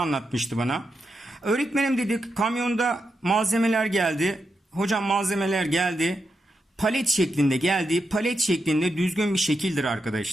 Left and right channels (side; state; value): both; normal; correlation 0.86